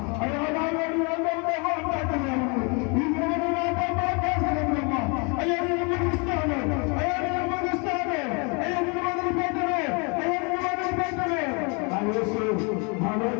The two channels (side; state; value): right; quieter; 33.1 dB